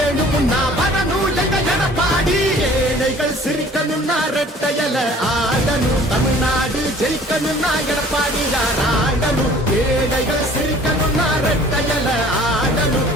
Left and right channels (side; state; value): both; normal; correlation 0.51